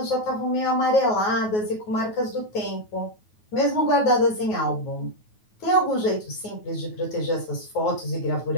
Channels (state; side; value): late; right; 9.3 ms